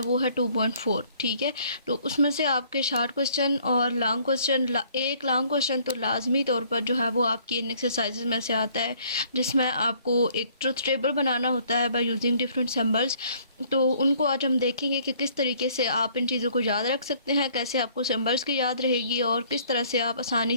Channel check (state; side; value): inverted; both; correlation -0.60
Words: है 2.4। ठीक है, तो उसमें से आपके शॉर्ट क्वेश्चन और लॉन्ग क्वेश्चन, एक लॉन्ग क्वेश्चन तो लाजमी तौर पर जो है वो आपकी इन एक्सरसाइजेज में से आता है, जिसमें आपको एक ट्रुथ टेबल बनाना होता है बाय यूजिंग डिफरेंट सिंबल्स। तो उनको आज हम देखेंगे कि किस तरीके से आप इन चीज़ों को याद रख सकते हैं, कैसे आपको सिंबल्स की याद रहेगी और किस तरह से आप